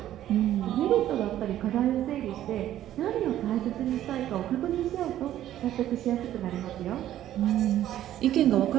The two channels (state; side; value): quieter; left; 12.4 dB